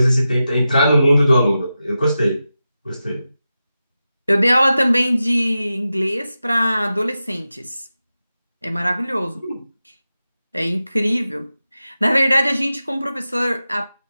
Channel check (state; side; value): inverted; both; correlation -0.92